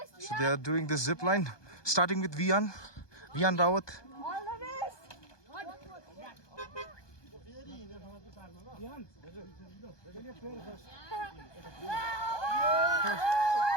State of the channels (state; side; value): late; right; 1.2 ms